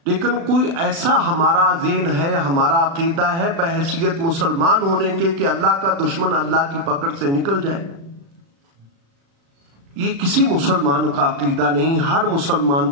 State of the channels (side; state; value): left; late; 36 ms